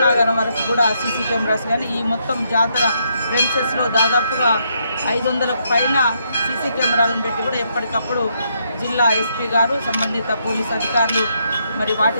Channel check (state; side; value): inverted; both; correlation -0.76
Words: వరకు కూడా సీసీ కెమెరాస్ కానీ ఈ మొత్తం జాతర ప్రెమిసెస్లో దాదాపుగా 500కు పైన సీసీ కెమెరాలను పెట్టి కూడా ఎప్పటికప్పుడు జిల్లా ఎస్పీ గారు సంబంధిత పోలీస్ అధికారులు మరి